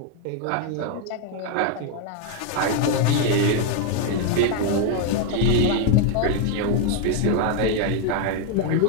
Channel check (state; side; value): different; both; correlation 0.00